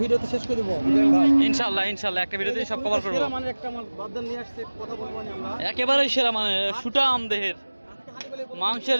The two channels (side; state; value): both; inverted; correlation -1.00